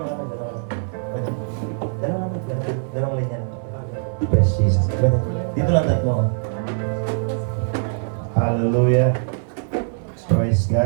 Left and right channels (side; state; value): left; silent; digital silence